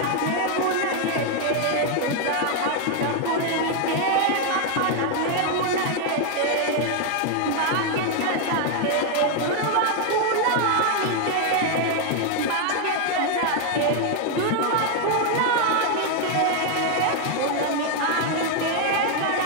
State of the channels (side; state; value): both; different; correlation 0.00